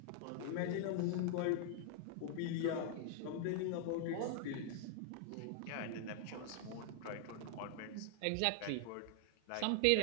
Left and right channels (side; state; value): both; different; correlation 0.00